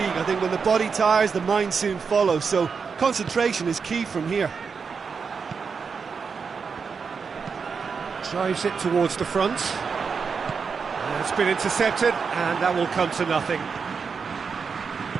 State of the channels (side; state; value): left; quieter; 5.6 dB